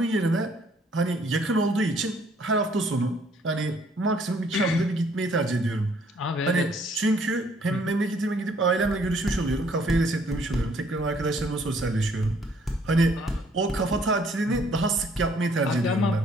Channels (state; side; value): normal; both; correlation 0.63